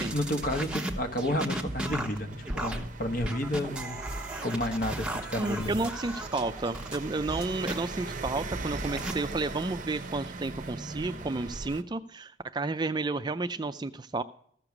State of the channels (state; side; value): normal; both; correlation 0.56